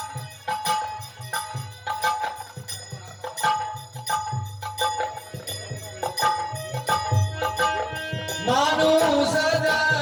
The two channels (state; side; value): identical; both; correlation 1.00